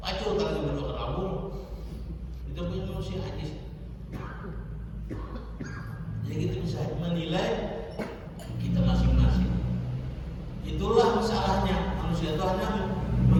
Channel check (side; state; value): both; identical; correlation 1.00